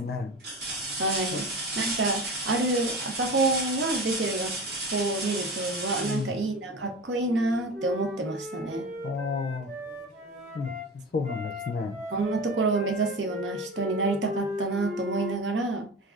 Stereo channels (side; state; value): both; normal; correlation 0.31